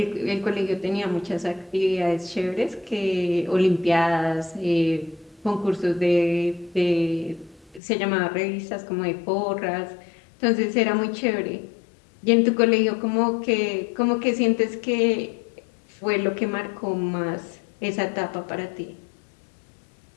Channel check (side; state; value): right; drops out; at 7.8 s